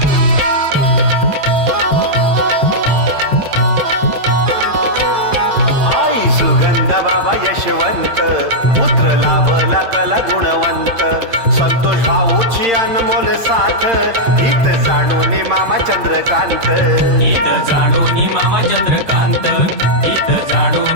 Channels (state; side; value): late; left; 8.8 ms